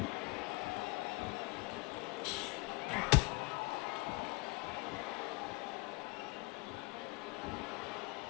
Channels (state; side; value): quieter; right; 26.0 dB